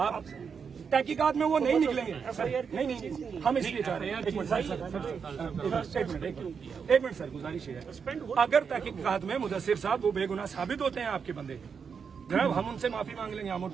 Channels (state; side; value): quieter; left; 6.3 dB